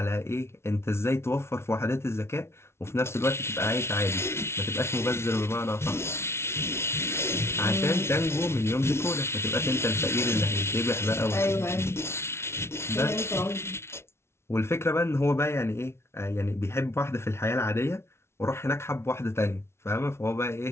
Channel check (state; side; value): late; right; 0.12 ms